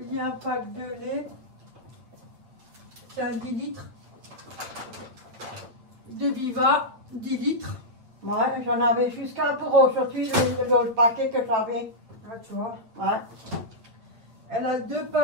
Il y a un pack de lait. C'est un 10 litres. De Viva, 10 litres. Ouais, j'en avais jusqu'à pour aujourd'hui, le paquet que j'avais. Ah, tu vois. Ouais. Elle a 2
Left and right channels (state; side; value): late; left; 8.9 ms